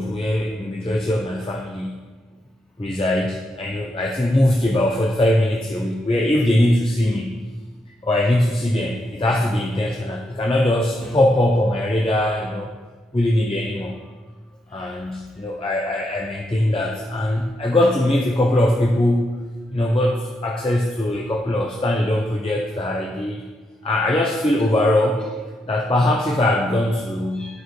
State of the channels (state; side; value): normal; both; correlation 0.81